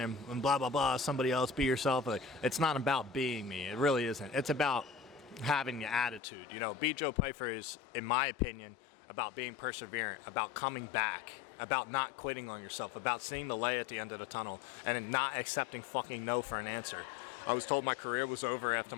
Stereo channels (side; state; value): right; drops out; at 6.2 s